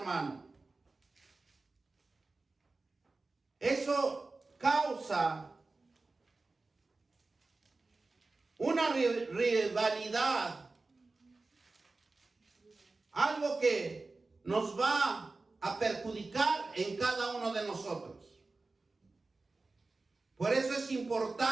eso causa una rivalidad, algo que nos va a perjudicar en cada uno de nosotros. Por eso es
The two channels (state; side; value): quieter; left; 3.5 dB